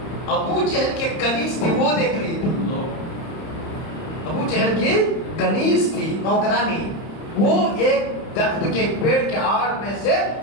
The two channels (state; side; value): late; right; 30 ms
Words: ابو جہل کے کنیز تھی، وہ دیکھ رہی تھی۔ ابو جہل کی کنیز تھی، نوکرانی، وہ ایک درخت کے پیڑ کے آڑ میں سے